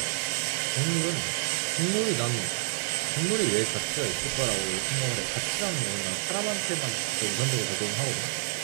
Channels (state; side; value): silent; left; 59 dB below the other